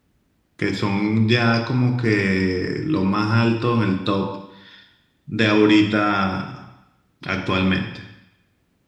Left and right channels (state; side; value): identical; both; correlation 1.00